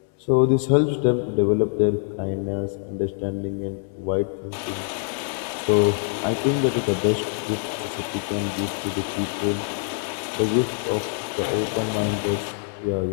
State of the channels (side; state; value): right; silent; 62 dB below the other